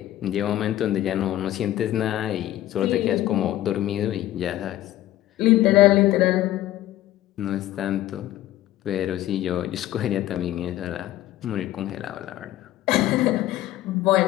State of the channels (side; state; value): right; quieter; 14.2 dB